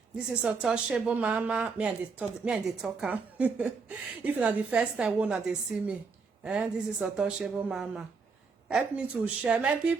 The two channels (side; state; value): left; quieter; 4.9 dB